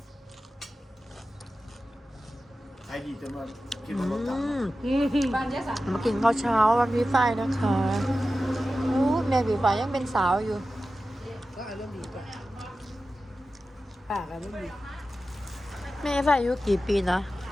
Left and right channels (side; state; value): both; normal; correlation 0.94